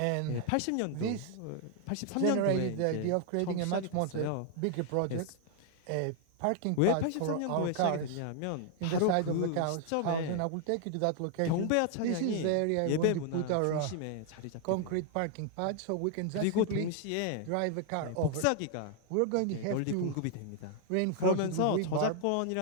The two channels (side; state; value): both; different; correlation 0.00